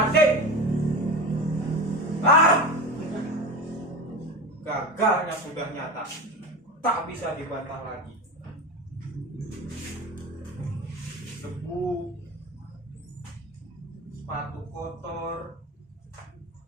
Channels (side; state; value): both; normal; correlation 0.26